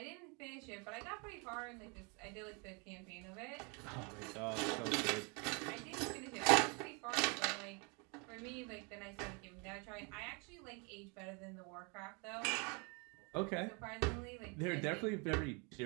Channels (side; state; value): left; quieter; 32.7 dB